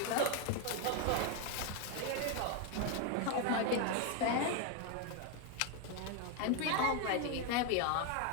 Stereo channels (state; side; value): different; both; correlation 0.01